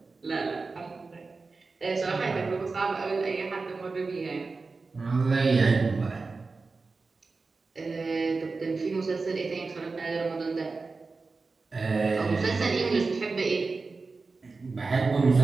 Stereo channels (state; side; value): quieter; left; 4.0 dB